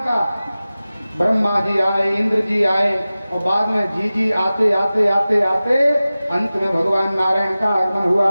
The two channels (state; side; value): inverted; both; correlation -0.96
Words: ब्रह्मा जी आए, इंद्र जी आए, और बाद में जी आते आते आते आते अंत में भगवान नारायण का आगमन हुआ।